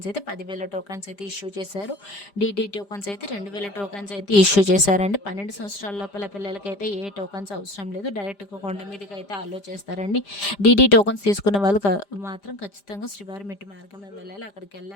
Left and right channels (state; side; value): late; right; 5.0 ms